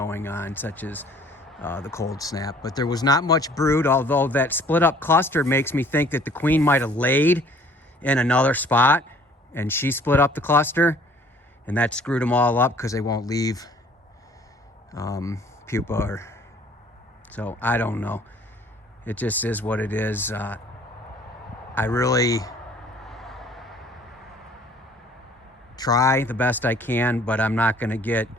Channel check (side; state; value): both; normal; correlation 0.55